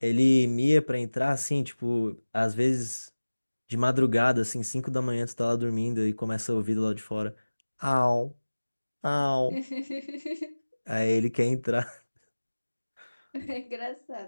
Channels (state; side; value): inverted; both; correlation -1.00